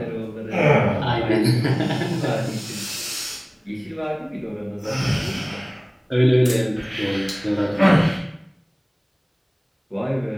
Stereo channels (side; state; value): both; identical; correlation 1.00